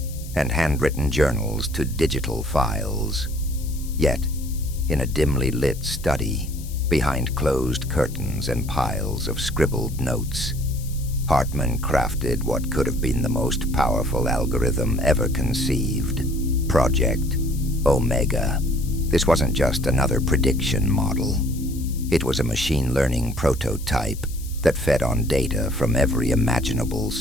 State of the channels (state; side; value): noise; left; hiss, 17 dB below the sound